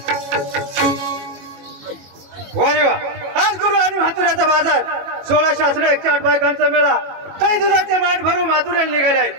वारे वा आज गुरु आणि म्हातुऱ्याचा बाजार 16 शास्त्र 108 बायकांचा मेळा काही दुधाचे माठ भरून म्हातुऱ्याला निघाले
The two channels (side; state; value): left; late; 21 ms